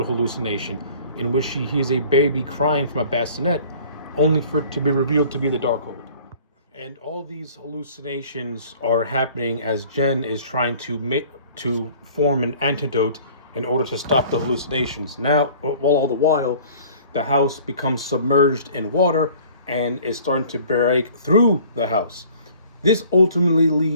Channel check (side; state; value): both; inverted; correlation -0.51